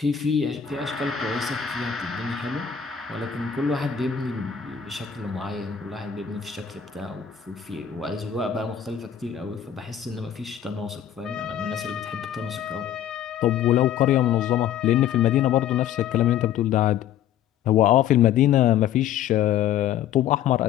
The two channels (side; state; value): right; quieter; 9.7 dB